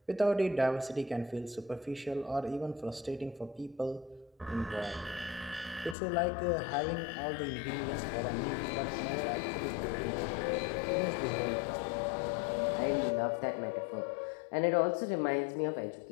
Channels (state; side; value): drops out; right; at 6.0 s